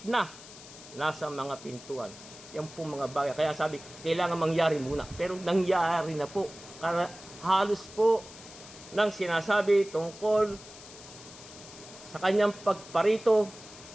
na nasa mga pintuan. Yan po mga bagay. Kaya sabi, kailangan mangyari muna. Pero nangyari na po. Halos po nang sinasabi tungkol sa kanyang pagparito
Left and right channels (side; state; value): left; noise; hiss, 17 dB below the sound